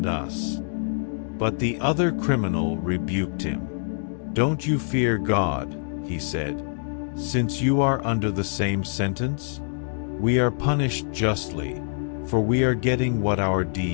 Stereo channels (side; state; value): right; silent; digital silence